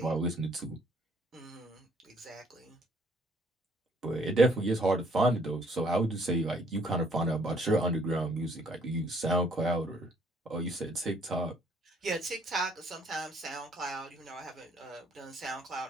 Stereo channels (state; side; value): normal; both; correlation 0.64